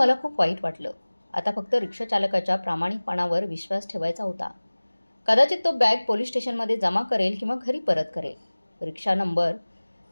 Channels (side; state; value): both; inverted; correlation -1.00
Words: खूप वाईट वाटलं. आता फक्त रिक्षाचालकाच्या प्रामाणिकपणावर विश्वास ठेवायचा होता. कदाचित तो बॅग पोलीस स्टेशनमध्ये जमा करेल किंवा घरी परत करेल.